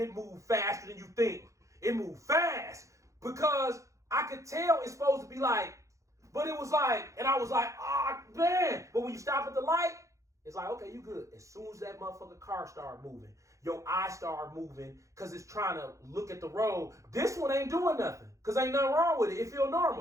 it move faster than you think. It moved fast because I could tell it's supposed to be like, but it was like, and I was like, man. But when you stop at the light, it's like, okay, you good. As soon as that motherfucking car start moving, your eye start moving because it's trying to look at the road. This one ain't doing nothing because ain't nothing wrong with it. It feel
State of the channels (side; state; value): left; late; 0.15 ms